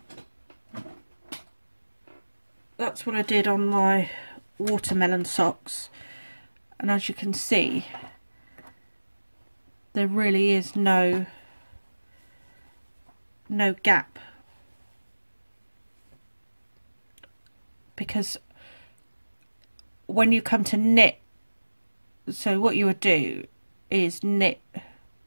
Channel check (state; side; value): inverted; both; correlation -1.00